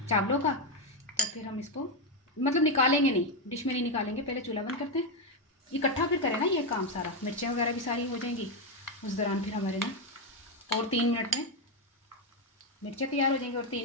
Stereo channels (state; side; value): normal; both; correlation 0.06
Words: चावलों का, तो फिर हम इसको मतलब निकालेंगे नहीं, डिश में नहीं निकालेंगे, पहले चूल्हा बंद करते हैं। इकट्ठा फिर करें ना ये काम सारा, मिर्चें वगैरह भी सारी हो जाएंगी उस दौरान फिर हमारे ना, और 3 मिनट में मिर्चें तैयार हो जाएंगी और